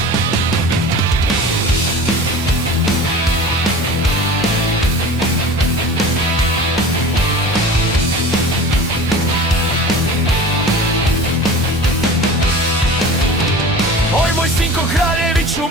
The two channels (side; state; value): both; normal; correlation 0.37